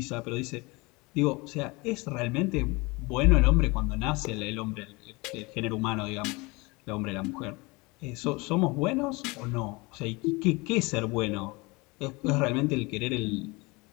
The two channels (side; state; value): right; quieter; 25.4 dB